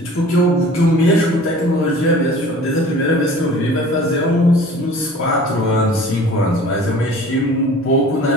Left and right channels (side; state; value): both; normal; correlation 0.45